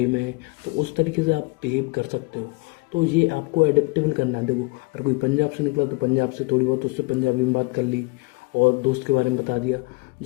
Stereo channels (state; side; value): quieter; right; 26.1 dB